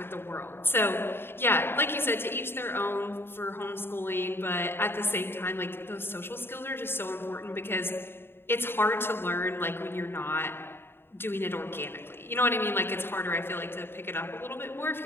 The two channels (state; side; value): late; right; 0.11 ms